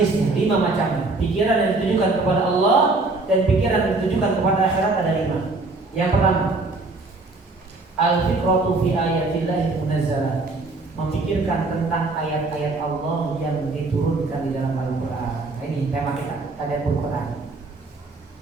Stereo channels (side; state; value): left; quieter; 3.4 dB